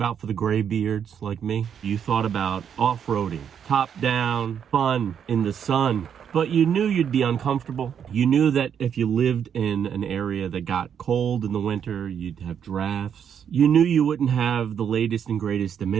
for the gray beards like me, you thought about off-roading, top down, fun in the sun. But you knew you'd be uncomfortable. You knew that if you lived in an area that got cold in the winter, you'd have drafts. You knew you wouldn't have the latest and greatest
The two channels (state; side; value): quieter; left; 8.2 dB